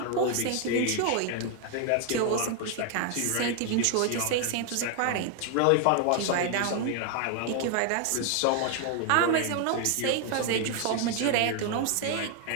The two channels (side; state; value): both; different; correlation 0.00